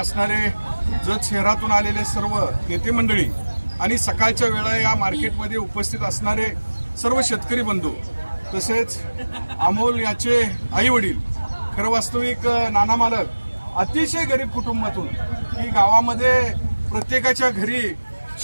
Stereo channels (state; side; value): inverted; both; correlation -1.00